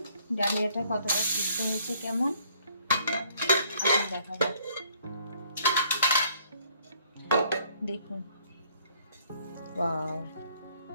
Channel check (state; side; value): inverted; both; correlation -0.63